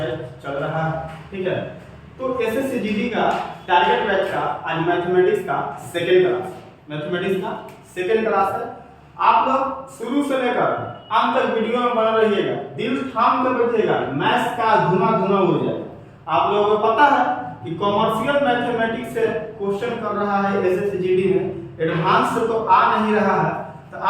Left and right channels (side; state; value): both; identical; correlation 1.00